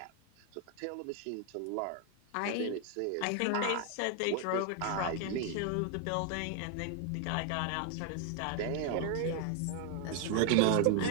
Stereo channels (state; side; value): different; both; correlation 0.01